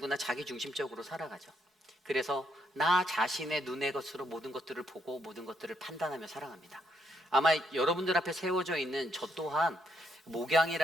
자기중심적으로 살아가죠. 그래서 나 자신의 눈의 것으로 모든 것들을 보고 모든 것들을 판단하며 살아갑니다. 아마 여러분들 앞에 세워져 있는 저 또한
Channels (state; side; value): normal; both; correlation 0.75